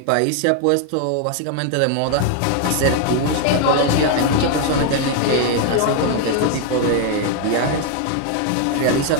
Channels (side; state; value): both; different; correlation 0.00